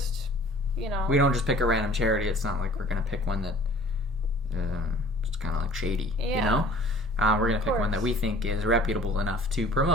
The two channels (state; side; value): normal; both; correlation 0.49